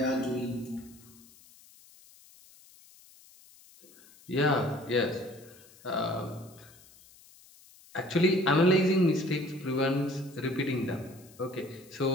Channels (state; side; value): noise; left; hiss, 25 dB below the sound